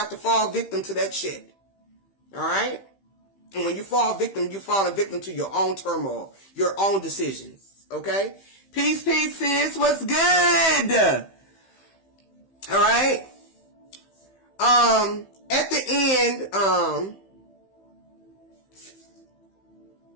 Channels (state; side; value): late; right; 15 ms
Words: to fall victim to that shit. Alright? And when you fall victim, you're falling victim to your own turmoil, your own decisions. Okay? Peace, sis. What's good? Alright? At the end,